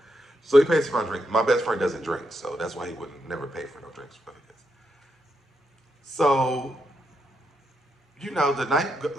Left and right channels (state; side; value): normal; both; correlation 0.81